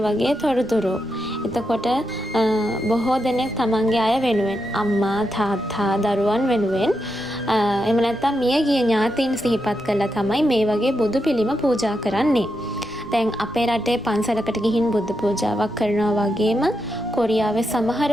වගේ තොරතුරු. එතකොට බොහෝ දෙනෙක් තමන්ගේ අය වෙනුවෙන්, අම්මා, තාත්තා, දරුවන් වෙනුවෙන් එහෙම නැත්නම් මියගිය ඥාතීන් සිහිපත් කරලා තමයි මේ වගේ බුදු පිළිම පූජා කරන්නේ. දැන් අපේ රටේ පන්සලකට ගිහින් බුද්ධ පූජාවක් කරනවා වගේම කොරියාවේ සමහර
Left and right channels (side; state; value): right; noise; rumble, 24 dB below the sound